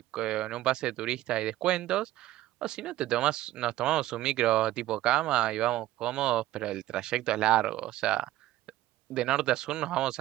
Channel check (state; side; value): quieter; left; 15.1 dB